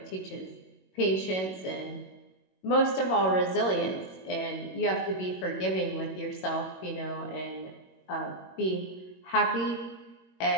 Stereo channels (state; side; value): late; right; 21 ms